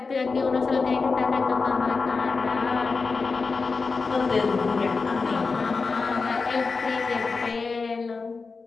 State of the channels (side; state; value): right; quieter; 4.4 dB